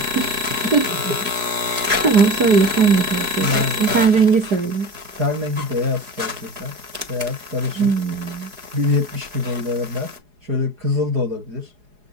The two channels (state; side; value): late; left; 4.8 ms